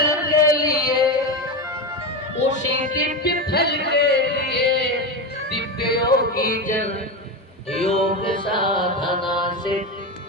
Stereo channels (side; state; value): both; normal; correlation 0.17